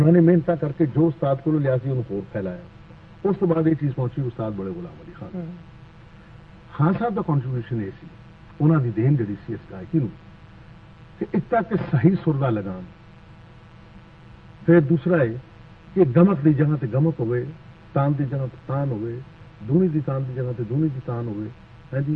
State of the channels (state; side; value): identical; both; correlation 1.00